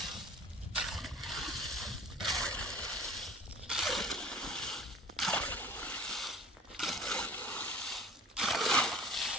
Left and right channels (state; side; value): normal; both; correlation 0.45